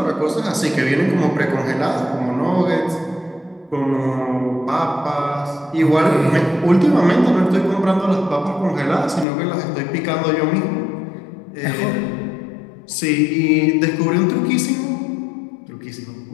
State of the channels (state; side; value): drops out; right; at 9.2 s